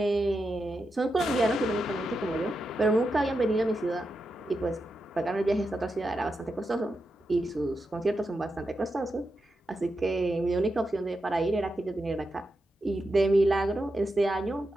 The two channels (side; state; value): both; normal; correlation 0.87